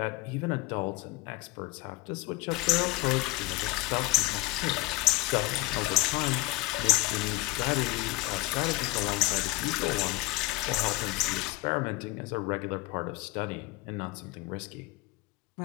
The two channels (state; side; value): quieter; right; 19.2 dB